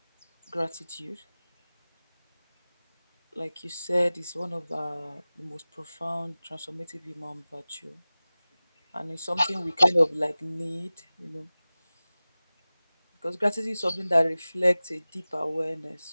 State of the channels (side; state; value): both; inverted; correlation -0.97